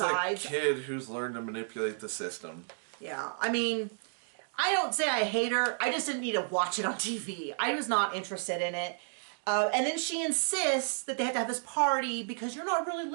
This is a kid who's learned to manipulate the system. Yeah, I mean, I don't say I hate her. I just didn't need to watch it on TV. I was not interested in it. And then she insists that they have to have this party because you're not really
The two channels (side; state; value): left; silent; digital silence